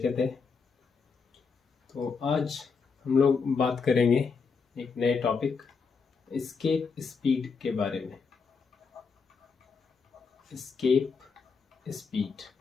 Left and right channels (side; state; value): right; quieter; 5.2 dB